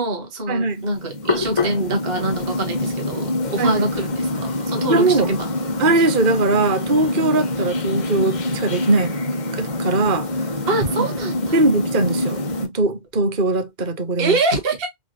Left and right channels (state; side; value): late; left; 2.1 ms